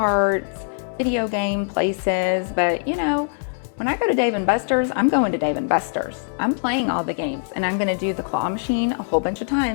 video game places, but when I go to Dave & Buster's, I'm going to Dave & Buster's. I'm playing all the games, and I'm going to do the claw machine a whole bunch of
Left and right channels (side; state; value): right; silent; 60 dB below the other